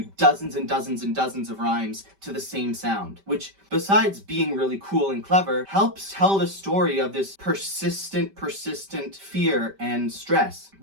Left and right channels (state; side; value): late; left; 5.1 ms